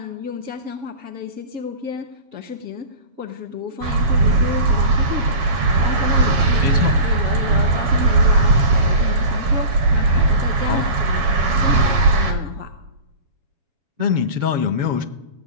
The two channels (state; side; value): late; left; 7.2 ms